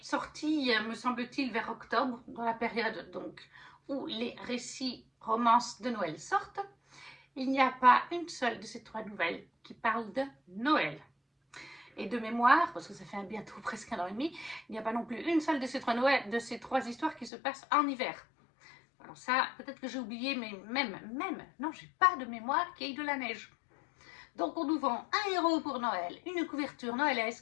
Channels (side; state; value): right; drops out; at 17.3 s